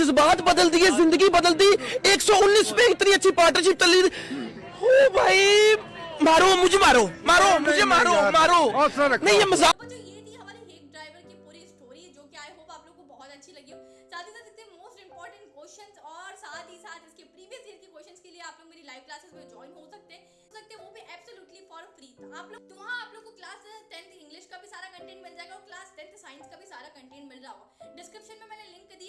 बदल दिए, जिंदगी बदल दी। 119 पे इतनी अच्छी पार्टनरशिप चल रही थी। ओ भाई मारो मुझे, मारो मारो मुझे, मारो मारो नहीं, ये मजाक। जो ये थी हमारे हेग ड्राइवर की पूरी स्टोरी, जो कि आई होप आप लोगों को बहुत अच्छी लगी हो। साथ ही साथ इतने मोस्ट इंपॉर्टेंट क्वेश्चंस और साथ ही साथ इसके प्रीवियस ईयर के क्वेश्चंस के लिए आप लोग मेरी लाइव क्लासेस में ज्वाइन हो सकते हैं, वो भी एब्सोल्युटली फॉर फ्री। आप लोग तो वहाँ आप लोग को क्लास 10th इंग्लिश का भी सारा कंटेंट मिल जाएगा और क्लास 10th साइंस का भी सारा कंटेंट मिल रहा होगा। डिस्क्रिप्शन में मैंने लिंक दी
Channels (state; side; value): identical; both; correlation 1.00